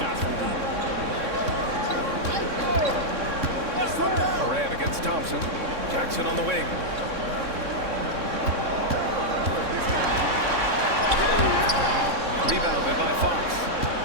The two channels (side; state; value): left; late; 3.6 ms